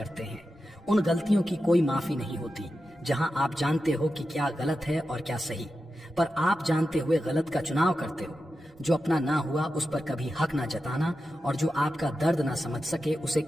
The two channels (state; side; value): normal; both; correlation 0.91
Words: हैं। उन गलतियों की कोई माफी नहीं होती जहां आप जानते हो कि क्या गलत है और क्या सही, पर आप जानते हुए गलत का चुनाव करते हो। जो अपना ना हुआ उस पर कभी हक ना जताना, और जो आपका दर्द ना समझ सके उसे